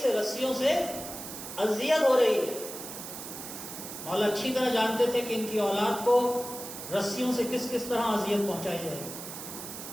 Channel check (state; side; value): noise; right; hiss, 10 dB below the sound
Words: رسیوں سے اذیت ہو رہی ہے۔ مولا اچھی طرح جانتے تھے کہ ان کی اولاد کو رسیوں سے کس کس طرح اذیت پہنچائی جائے،